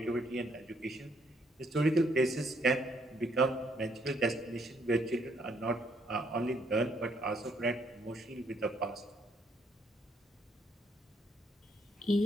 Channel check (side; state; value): both; normal; correlation 0.70